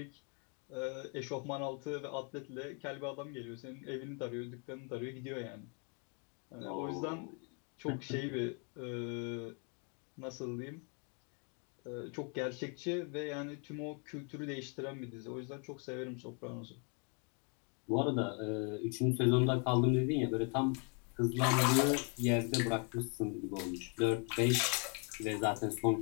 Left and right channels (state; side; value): quieter; right; 37.5 dB